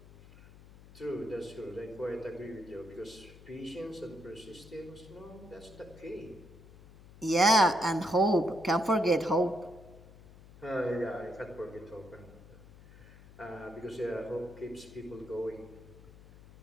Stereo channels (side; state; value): left; noise; hum, 20 dB below the sound